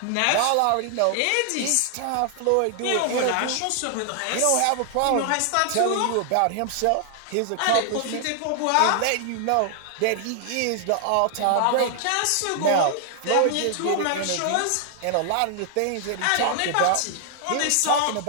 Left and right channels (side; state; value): both; different; correlation 0.00